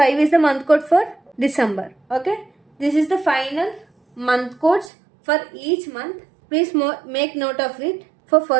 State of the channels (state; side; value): drops out; left; at 4.9 s